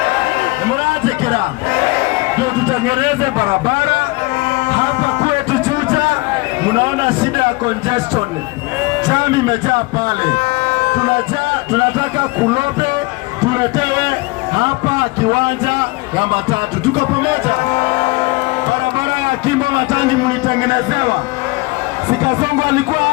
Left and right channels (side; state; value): right; quieter; 23.7 dB